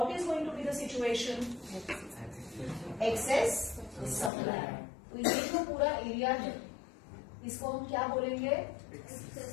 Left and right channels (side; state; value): right; drops out; at 4.3 s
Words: is going to be the situation? Excess supply. तो ये जो पूरा area है, इसको हम क्या बोलेंगे?